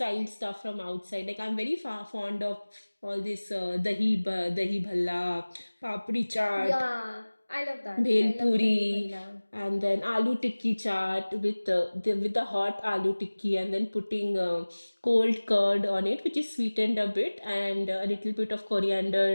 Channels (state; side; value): inverted; both; correlation -1.00